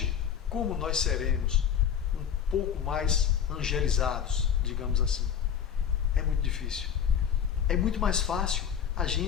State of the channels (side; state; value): right; quieter; 8.5 dB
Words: como nós seremos um pouco mais angelizados, digamos assim. É muito difícil. É muito mais fácil a